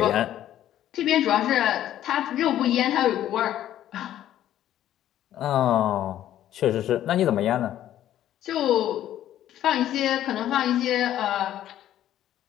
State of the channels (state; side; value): quieter; right; 12.1 dB